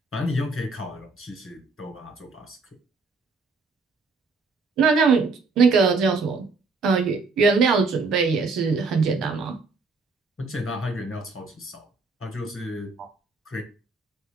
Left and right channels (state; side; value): quieter; left; 4.1 dB